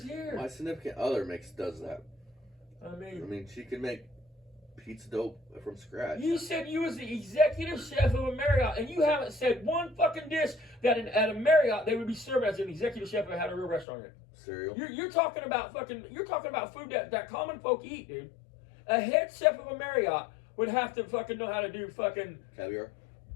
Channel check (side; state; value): right; drops out; at 13.9 s